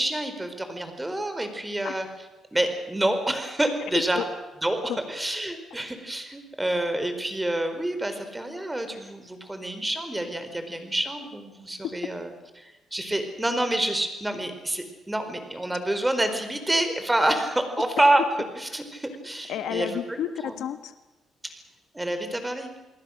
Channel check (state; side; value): normal; both; correlation 0.91